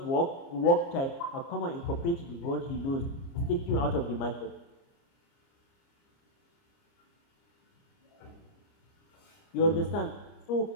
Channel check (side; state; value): right; late; 29 ms